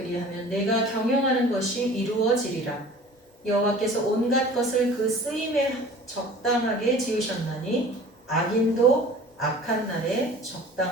내가 경영하는 것이 이루어지리라. 여호와께서 온갖 것을 그 쓰임에 적당하게 지으셨나니 악인도 악한 날에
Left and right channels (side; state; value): both; normal; correlation 0.44